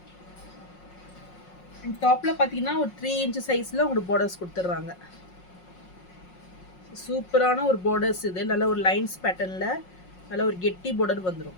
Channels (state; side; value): late; right; 5.5 ms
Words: அண்ட் டாப்பில் பார்த்தீங்கன்னா ஒரு 3 inches சைஸில் உங்களுக்கு பார்டர்ஸ் கொடுத்துட்றாங்க. சூப்பரான ஒரு பார்டர்ஸ் இது. நல்ல ஒரு லைன்ஸ் பேட்டர்னில் நல்ல ஒரு கெட்டி பார்டர்